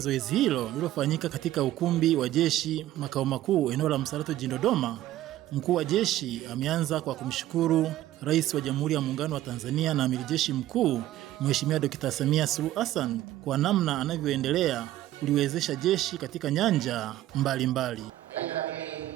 hilo lililofanyika katika ukumbi wa jeshi makao makuu eneo la Msalato jijini Dodoma, mkuu wa jeshi ameanza kwa kumshukuru Rais wa Jamhuri ya Muungano wa Tanzania na Amiri Jeshi Mkuu Mheshimiwa Dr. Samia Suluhu Hassan kwa namna anavyoendelea kuliwezesha jeshi katika nyanja mbalimbali.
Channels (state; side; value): quieter; left; 14.2 dB